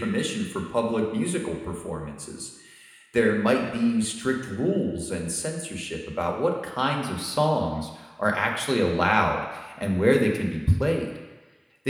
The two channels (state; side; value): identical; both; correlation 1.00